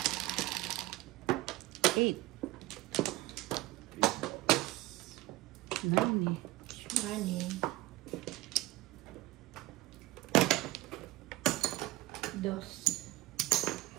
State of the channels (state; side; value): quieter; left; 18.7 dB